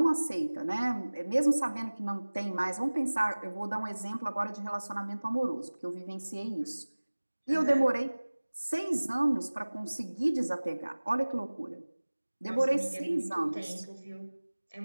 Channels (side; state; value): both; inverted; correlation -1.00